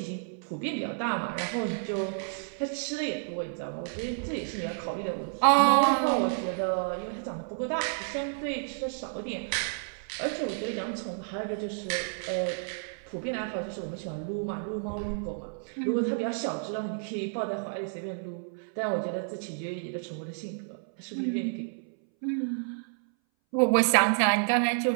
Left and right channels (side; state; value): left; silent; 58 dB below the other